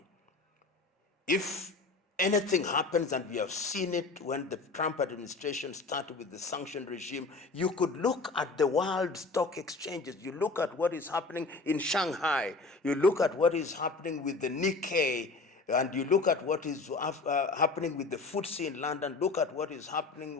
If anything happens, and we have seen it when the Trump administration started with the sanction regime, you could look at the world stock exchanges. You look at what is happening in Shanghai. You look at what is happening with the Nikkei, and you look at what is happening with the FTSE in London. Look at what is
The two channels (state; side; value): quieter; right; 3.8 dB